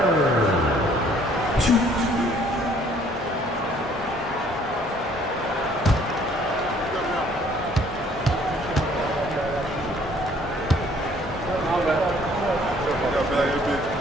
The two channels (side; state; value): both; normal; correlation 0.59